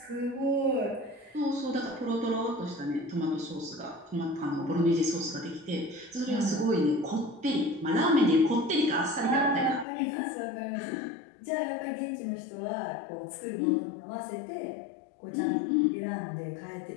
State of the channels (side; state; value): right; drops out; at 9.9 s